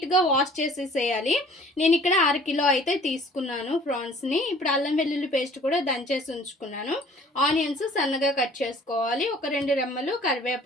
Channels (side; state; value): both; normal; correlation 0.52